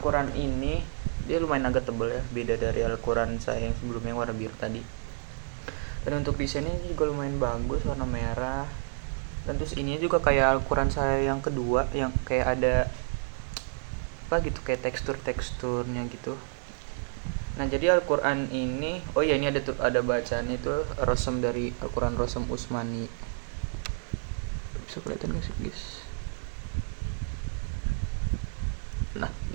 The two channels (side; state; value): left; silent; digital silence